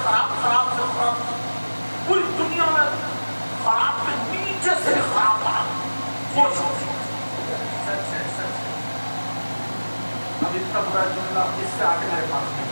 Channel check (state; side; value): inverted; both; correlation -1.00